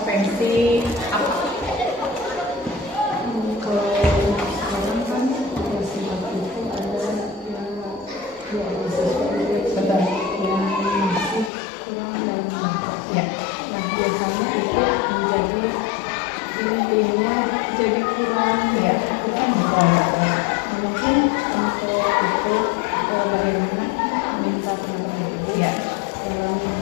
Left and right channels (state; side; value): drops out; right; at 11.5 s